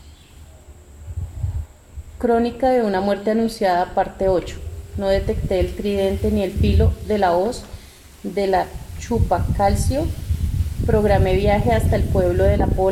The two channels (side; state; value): both; identical; correlation 1.00